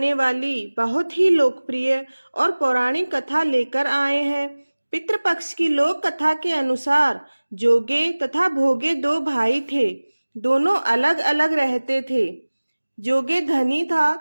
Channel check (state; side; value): inverted; both; correlation -1.00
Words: वाली बहुत ही लोकप्रिय और पौराणिक कथा लेकर आए हैं। पितृपक्ष की लोक कथा के अनुसार जोगे तथा भोगे दो भाई थे। दोनों अलग अलग रहते थे। जोगे धनी था